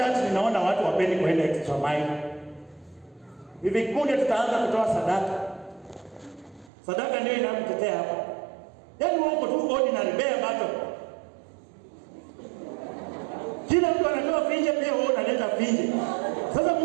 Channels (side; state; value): left; drops out; at 6.7 s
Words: ninaona watu wapendi kuenda extra mile. Hivi punde tutaanza kutoa sadaka. Sadaka ndio inakutetea hapa. Yaani wako tu ordinary bare battle. Kila mtu anatoa finje, pia wewe unaleta finje. Sasa